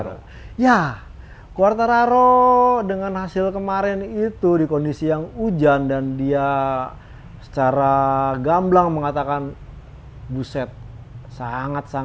Ya, Quartararo dengan hasil kemarin itu di kondisi yang hujan dan dia secara gamblang mengatakan buset,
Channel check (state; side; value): identical; both; correlation 1.00